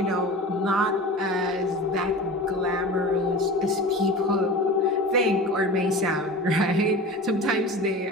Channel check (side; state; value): both; normal; correlation 0.34